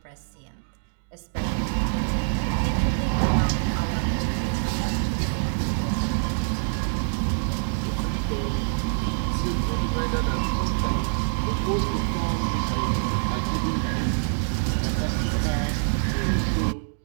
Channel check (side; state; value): left; silent; digital silence